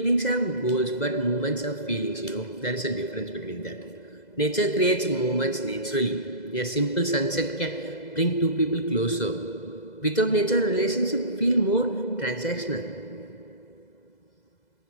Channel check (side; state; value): right; late; 2.0 ms